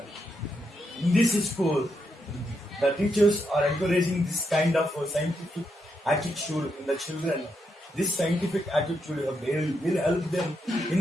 in this school, the teachers are encouraging this kind of scientific attitude in the children. This scientific attitude will help them in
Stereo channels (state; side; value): normal; both; correlation 0.81